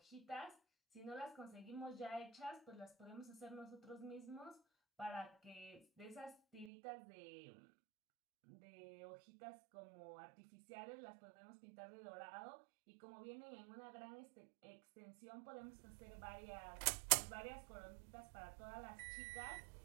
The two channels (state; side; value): drops out; left; at 6.7 s